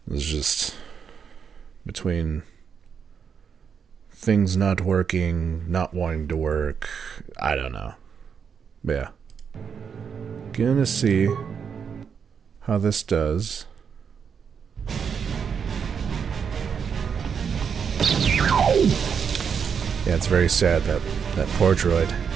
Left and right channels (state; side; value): quieter; left; 6.8 dB